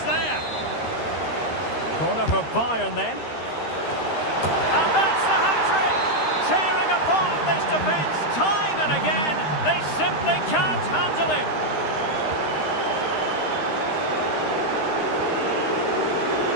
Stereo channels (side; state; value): right; late; 13 ms